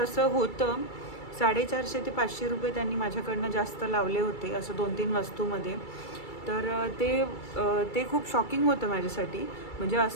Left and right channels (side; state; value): right; late; 2.3 ms